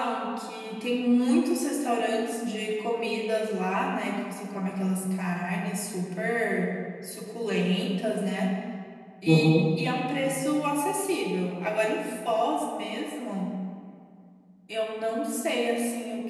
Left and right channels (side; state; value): both; identical; correlation 1.00